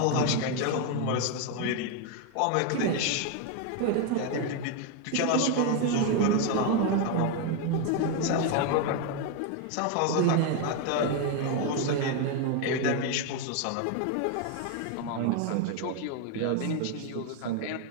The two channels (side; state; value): both; different; correlation 0.01